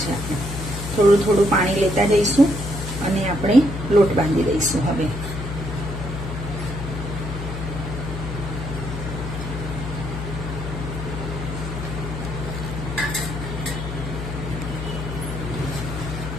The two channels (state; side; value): noise; left; hum, 6 dB below the sound